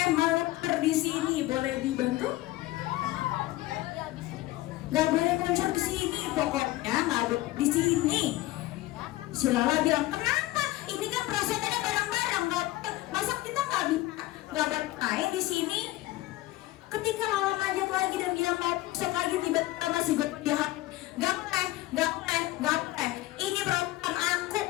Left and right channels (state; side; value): quieter; right; 17.5 dB